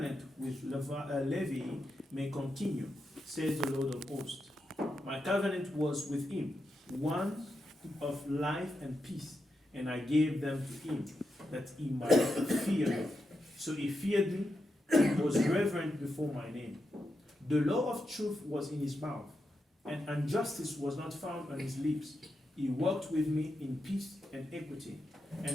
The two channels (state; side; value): normal; both; correlation 0.86